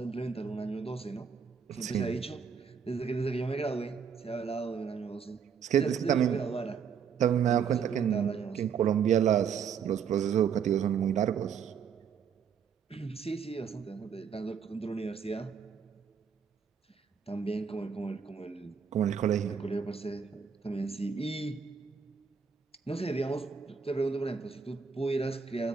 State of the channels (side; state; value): left; quieter; 6.9 dB